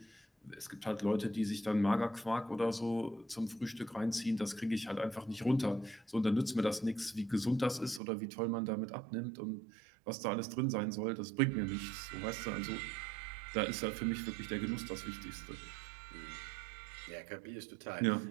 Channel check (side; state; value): left; drops out; at 8.0 s